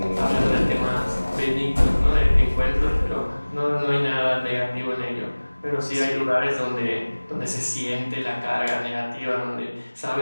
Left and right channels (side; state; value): both; inverted; correlation -1.00